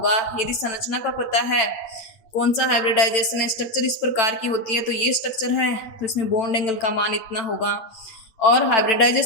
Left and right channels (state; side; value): late; right; 9.0 ms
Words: यदि संरचना का पता है, कौन सा हाइब्रिडाइजेशन है, स्ट्रक्चर इस प्रकार की होती है तो ये स्ट्रक्चर है, तो इसमें बॉन्ड एंगल का मान इतना होगा। और